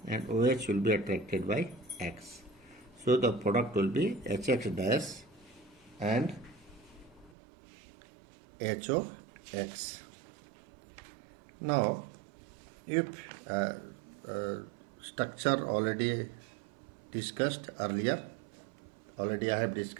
and OH will be attracted by X. So the product will be HX dash and HOX. Now, if structure already discussed earlier, I have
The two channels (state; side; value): drops out; left; at 7.3 s